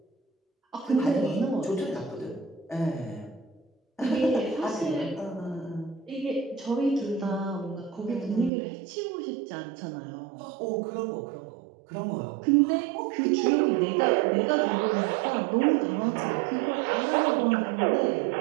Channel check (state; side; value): drops out; left; at 8.5 s